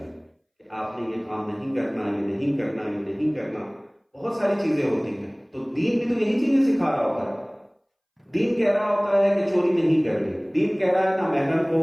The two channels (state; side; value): identical; both; correlation 1.00